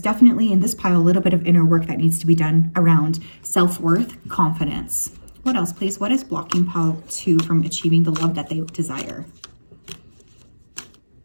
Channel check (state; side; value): inverted; both; correlation -1.00